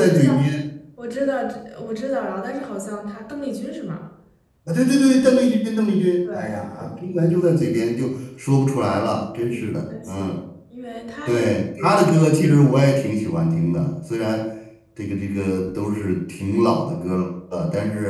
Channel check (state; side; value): identical; both; correlation 1.00